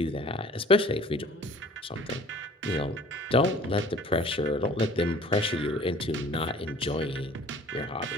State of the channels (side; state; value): both; normal; correlation 0.49